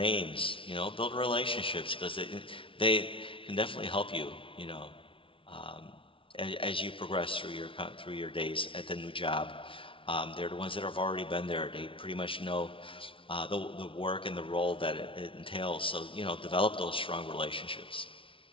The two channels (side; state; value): right; late; 0.25 ms